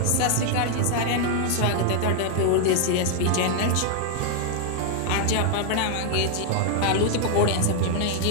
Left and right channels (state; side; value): different; both; correlation 0.00